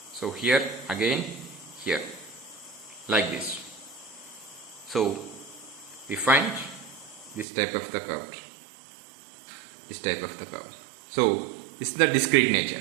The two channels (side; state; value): left; drops out; at 7.5 s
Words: So here again here like this. So we find this type of the curve. This type of the curve. So this is the discrete